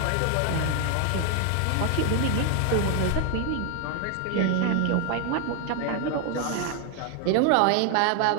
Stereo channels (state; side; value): different; both; correlation 0.01